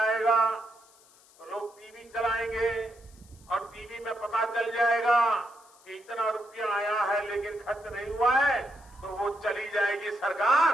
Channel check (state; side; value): noise; left; hiss, 27 dB below the sound